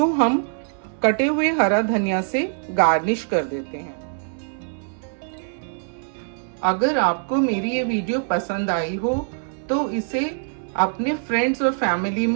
हम कटे हुए हरा धनिया से गार्निश कर देते हैं। अगर आपको मेरी ये वीडियो पसंद आई हो तो इसे अपने फ्रेंड्स और फैमिली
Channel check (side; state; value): left; silent; digital silence